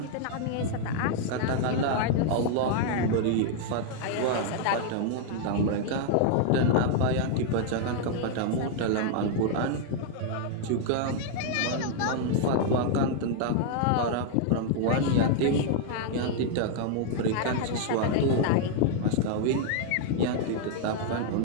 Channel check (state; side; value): different; both; correlation 0.00